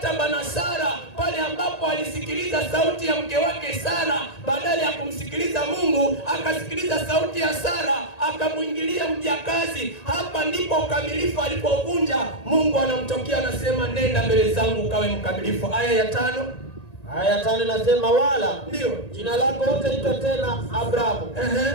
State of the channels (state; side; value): late; right; 1.9 ms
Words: na Sara, pale ambapo alisikiliza sauti ya mke wake Sara badala ya kumsikiliza Mungu, akasikiliza sauti ya Sara, akamuingilia mjakazi. Hapa ndipo ukamilifu alipovunja. Mungu anamtokea anasema, nenda mbele zangu ukawe mkamilifu. Aya ya 5. Aya 5 nasema, wala ndio jina lako hutaitwa tena Abrahamu,